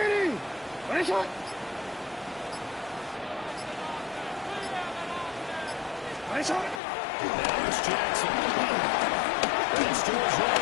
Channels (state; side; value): drops out; right; at 6.8 s